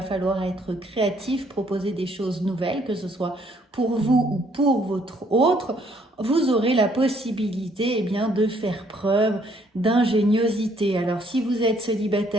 falloir être créatif, proposer des choses nouvelles, que ce soit pour vous ou pour votre autre. Vous aurez la possibilité eh bien, de faire preuve d'ingéniosité. Alors, si vous êtes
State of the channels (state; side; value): normal; both; correlation 0.66